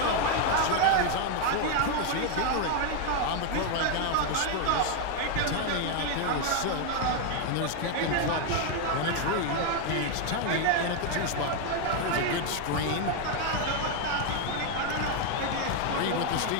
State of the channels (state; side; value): different; both; correlation 0.01